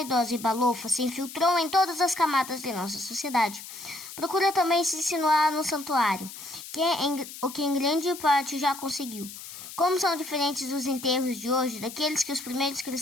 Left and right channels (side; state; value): left; noise; hiss, 13 dB below the sound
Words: e balofa, se infiltrou em todas as camadas de nossa sociedade, procura também se insinuar no santuário, o que em grande parte já conseguiu. Como são diferentes os enterros de hoje daqueles que os primeiros